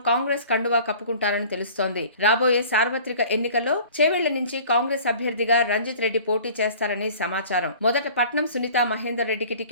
కాంగ్రెస్ కండువా కప్పుకుంటారని తెలుస్తోంది. రాబోయే సార్వత్రిక ఎన్నికల్లో చేవెళ్ల నుంచి కాంగ్రెస్ అభ్యర్థిగా రంజిత్ రెడ్డి పోటీ చేస్తారని సమాచారం. మొదట పట్నం సునీతా మహేందర్ రెడ్డికి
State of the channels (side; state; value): both; inverted; correlation -0.47